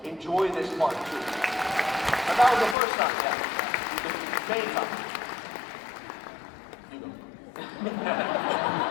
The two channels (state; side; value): drops out; right; at 2.8 s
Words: enjoy this part too. And that was the first time, yeah. Main time. You go.